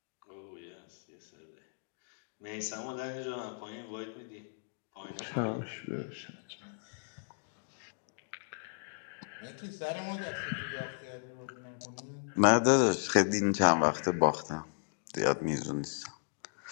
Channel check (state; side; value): silent; right; digital silence